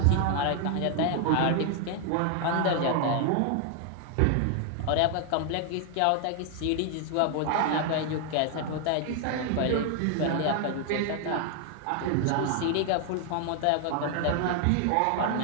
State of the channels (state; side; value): different; both; correlation 0.00